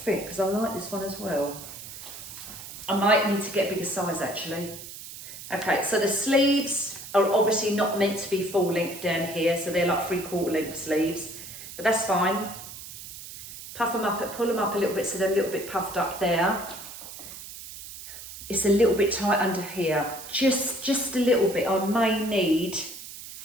because I like this one as well. I might need to get a bigger size actually. Okay, so the sleeves are obviously not meant to be full length down here, so they're like 3/4 length sleeves, but that's fine. Puff them up, pull them up a little bit so they're a little bit puffed up there. It's a little bit tight under here, just a little bit. I may need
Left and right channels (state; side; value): noise; right; hiss, 13 dB below the sound